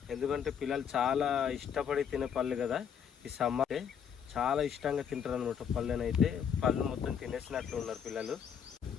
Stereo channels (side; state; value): right; quieter; 7.8 dB